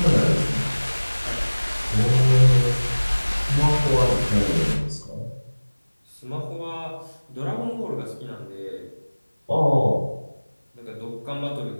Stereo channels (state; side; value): inverted; both; correlation -1.00